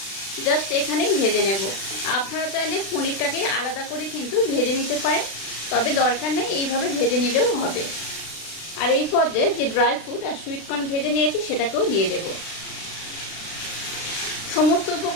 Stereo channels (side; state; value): right; late; 36 ms